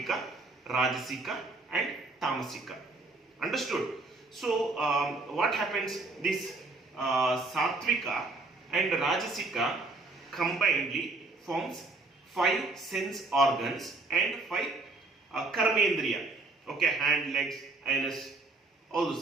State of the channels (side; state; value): left; quieter; 3.4 dB